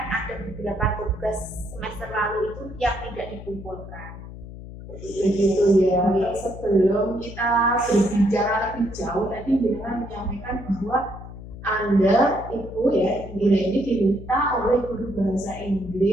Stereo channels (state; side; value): noise; left; hum, 13 dB below the sound